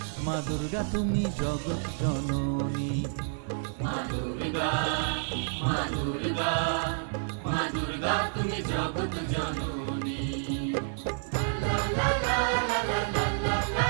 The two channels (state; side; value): silent; left; digital silence